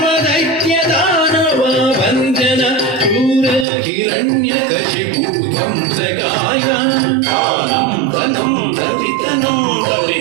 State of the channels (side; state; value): left; drops out; at 3.7 s